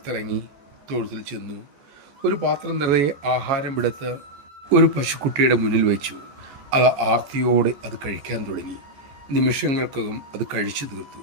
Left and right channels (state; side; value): late; left; 14 ms